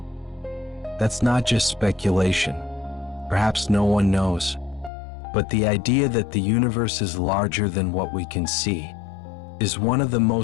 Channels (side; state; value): right; drops out; at 4.9 s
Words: That's not just speculation. Perhaps no one knows. But the idea that the universe is larger than what we can see is one of the